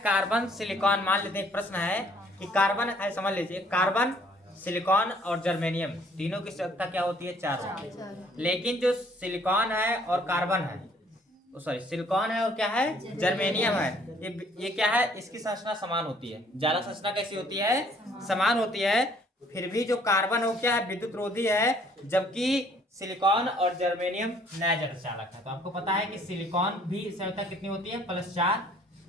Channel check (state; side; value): normal; both; correlation 0.60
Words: कार्बन सिलिकॉन। मान लेते हैं एक प्रश्न है कि कार्बन है, समझ लीजिए कार्बन सिलिकॉन और जर्मेनियम तीनों की संख्या क्या होती है? 4। लेकिन जो सिलिकॉन है और कार्बन है, सॉरी सिलिकॉन है और क्या है? जर्मेनियम है। ये क्या है? इसकी संरचना समान होती है। जालक संरचना कैसी होती है? समान होती है। फिर भी जो कार्बन हो क्या है? विद्युत रोधी है, जबकि सिलिकॉन और जर्मेनियम नैज अर्धचालक है। तो आपको पता है कि सिलिकॉन भी संयोजकता कितनी होती है? +4।